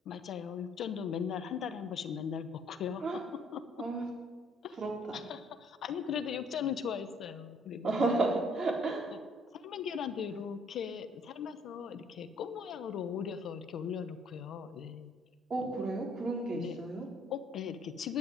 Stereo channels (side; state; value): both; normal; correlation 0.62